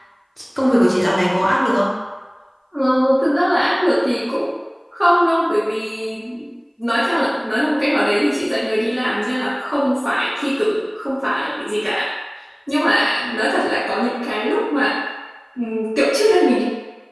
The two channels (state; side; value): identical; both; correlation 1.00